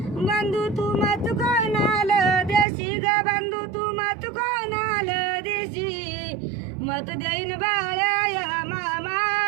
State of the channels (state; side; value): drops out; left; at 2.7 s